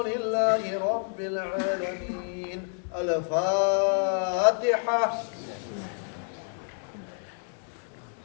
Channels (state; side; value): silent; right; 55 dB below the other